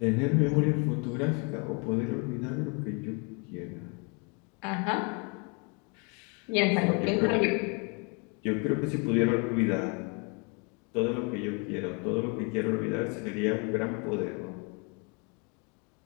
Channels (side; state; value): right; quieter; 33.8 dB